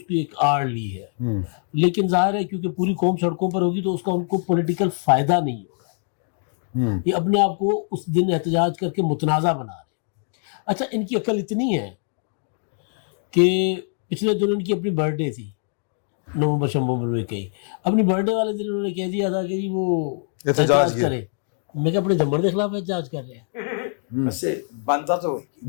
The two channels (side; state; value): right; silent; 63 dB below the other